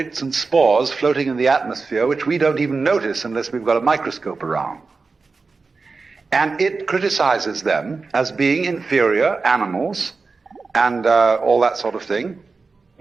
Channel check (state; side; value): quieter; left; 4.2 dB